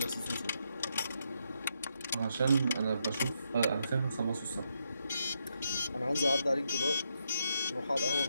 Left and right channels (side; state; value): both; inverted; correlation -0.80